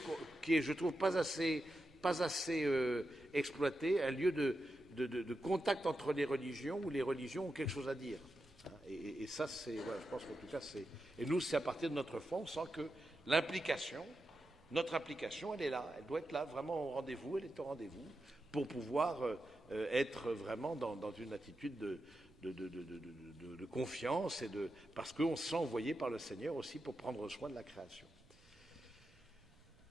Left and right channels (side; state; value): right; noise; rumble, 27 dB below the sound